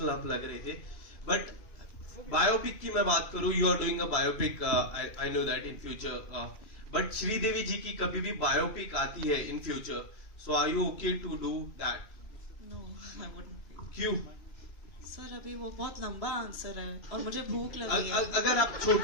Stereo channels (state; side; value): late; right; 3.0 ms